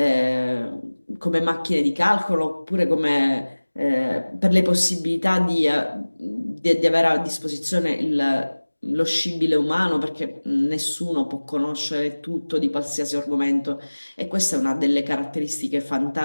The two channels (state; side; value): inverted; both; correlation -1.00